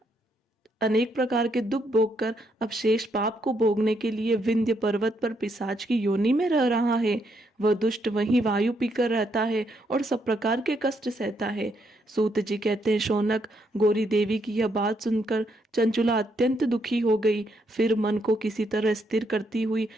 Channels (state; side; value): normal; both; correlation 0.76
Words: अनेक प्रकार के दुख भोगकर अब शेष पाप को भोगने के लिए विंध्य पर्वत पर पिशाच की योनि में रह रहा है। वह दुष्ट वहीं वायु पीकर रहता है और सब प्रकार के कष्ट सहता है। सूत जी कहते हैं, शौनक, गौरी देवी की यह बात सुनकर चंचुला अत्यंत दुखी हो गई। फिर मन को किसी तरह स्थिर करती हुई